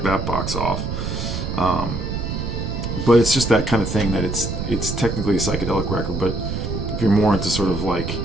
that box off. But it's just that kind of thing that it's technically a psychedelic record, but if you're more into sort of like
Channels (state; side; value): noise; right; rumble, 4 dB below the sound